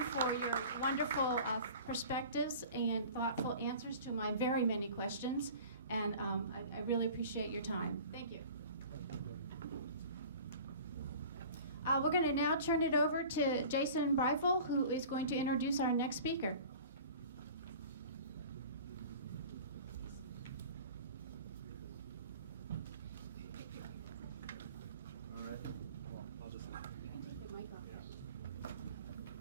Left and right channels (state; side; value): inverted; both; correlation -0.42